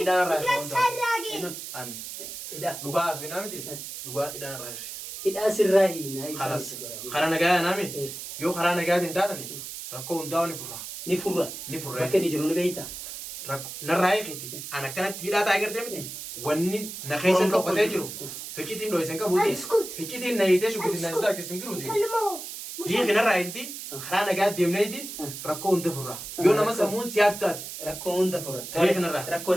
يفلس الراجل An Hidhaa dhugaa asuu hinaa miti? Dhugaa hidhaan irraa hirri. hidhaa sirraa hiinaa ibsaa Karas itti jedhame. karaa nagaa naami Eh. yoo karaa nagaatiin taatani rakkoo hundaa ni furra. Ni furra. Ni furra. Bakka inni jiru ni beektaa. Narraa eegeeti. An akkanatti hidhaa taa'ee gartee miti. Wanni na keessa dhokatee jiru. Ficcitiin dho'isan qabuuti. Ficcitiin na hiitee shukutiin na isaa akkasiin jiruuti. كلمه Hiiki narraa eegiti. Karaa nagaa deemneeti rakkoo hunda furra. Yoo nama sammuun siyaatu taati. Rakkoo hunda furra. Hiiki narraa. Rakkoo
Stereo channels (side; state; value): right; noise; hiss, 9 dB below the sound